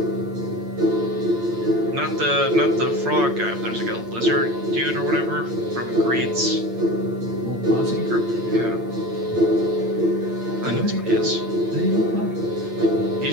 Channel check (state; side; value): late; left; 8.8 ms